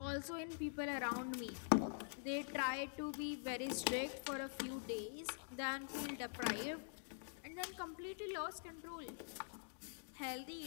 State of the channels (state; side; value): silent; right; digital silence